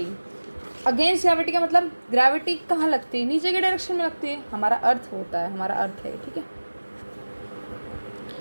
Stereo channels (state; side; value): inverted; both; correlation -1.00